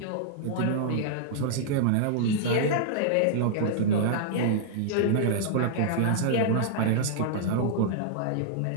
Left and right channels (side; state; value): both; different; correlation -0.02